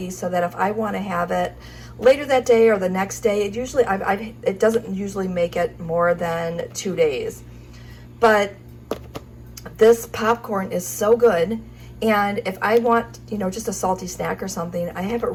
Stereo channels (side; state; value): both; identical; correlation 1.00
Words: so that if I want to have it later that day or the next day, it doesn't usually make it more than 2 days. But this popcorn is so good, and if I want, just a salty snack or something, I have it